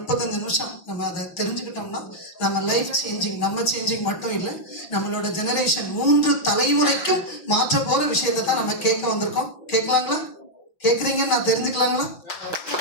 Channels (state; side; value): late; right; 6.3 ms